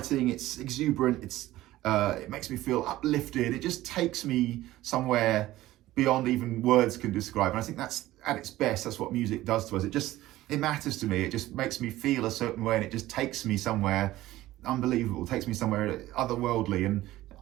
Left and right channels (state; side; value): quieter; left; 16.0 dB